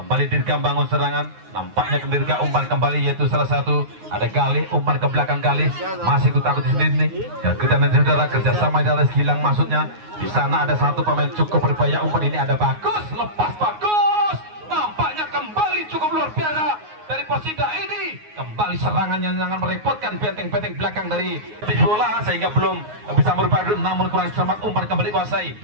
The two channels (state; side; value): late; left; 9.5 ms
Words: Dirga bangun serangan. Nampaknya ke Dirga, umpan kembali, yaitu salah satu ada Galih, umpan ke belakang Galih, masih takut di sini nih. Ya, kita nanti saudara kerjasama di atas Gilang maksudnya. Di sana ada satu pemain, cukup berbahaya umpan ini, ada Bagus, lepas Bagus. Nampaknya kembali cukup luar biasa dari Persida ini. Kembali serangannya sangat merepotkan benteng-benteng belakang dari bola sehingga belum bisa merubah, namun kurang cermat umpan kembali kuasai.